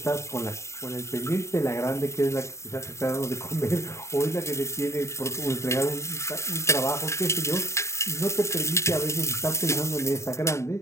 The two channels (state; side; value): late; right; 0.14 ms